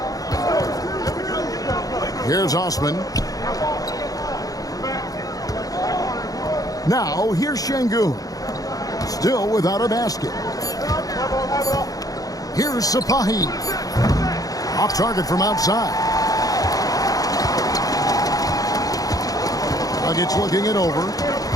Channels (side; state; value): right; late; 0.17 ms